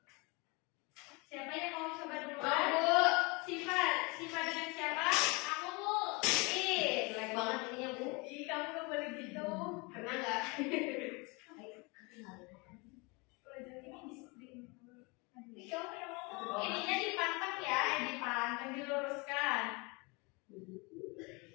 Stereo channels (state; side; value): quieter; right; 28.1 dB